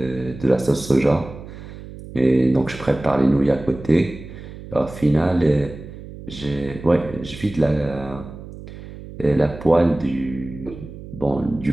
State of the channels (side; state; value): right; noise; hum, 14 dB below the sound